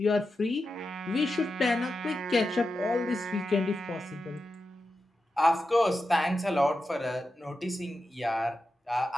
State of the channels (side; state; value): both; normal; correlation 0.90